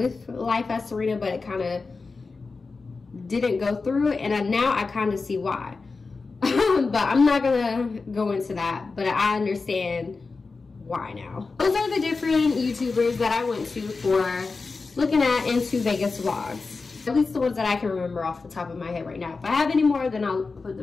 Life as Serena, but it kind of didn't go through, and now I kind of see why. But I'm not gonna go into that, but I understand why now. Those are the different YouTubers that I went to for looking at into Vegas vlogs. At least the ones that I can remember off the top of my head right now. If I have any more, then I'll put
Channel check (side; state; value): right; quieter; 4.2 dB